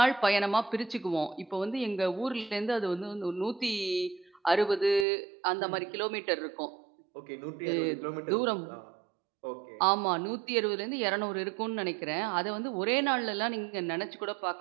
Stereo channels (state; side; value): drops out; left; at 5.1 s